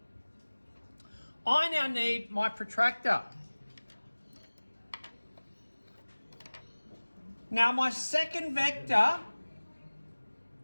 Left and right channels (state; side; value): inverted; both; correlation -1.00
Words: I now need my protractor. Now my second vector